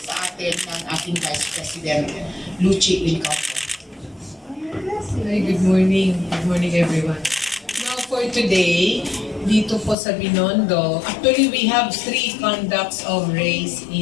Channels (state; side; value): drops out; right; at 10.0 s